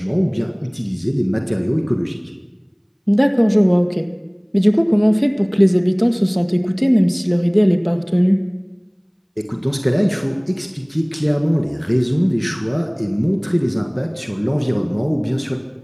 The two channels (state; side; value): identical; both; correlation 1.00